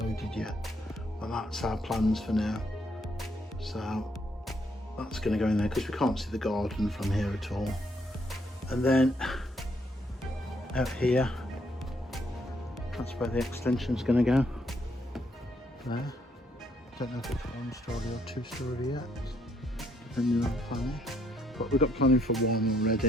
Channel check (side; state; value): both; normal; correlation 0.71